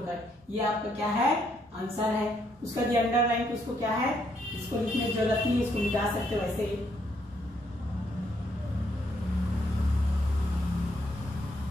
ये आपका क्या है, आंसर है। उसका जो अंडरलाइन उसको क्या है, इसको लिखने की जरूरत नहीं, इसको मिटा सकते हो वैसे ही।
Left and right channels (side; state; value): both; normal; correlation 0.73